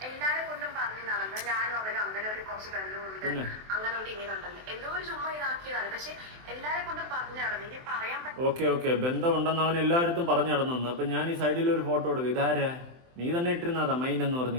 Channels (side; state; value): left; late; 23 ms